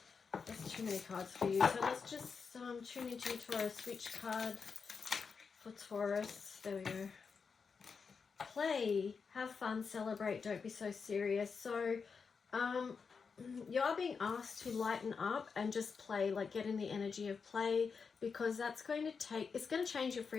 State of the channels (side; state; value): right; quieter; 5.5 dB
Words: That's too many cards for you. So let's just tune into you, Taurus. Which card for Taurus? There we go. Play, have fun, celebrate, don't be so serious. So you are being asked to lighten up and just play, like get in the energy of play, because that's going to it's going to change your